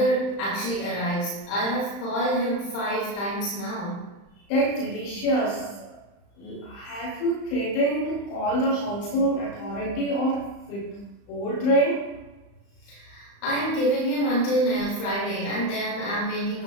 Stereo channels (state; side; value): late; right; 35 ms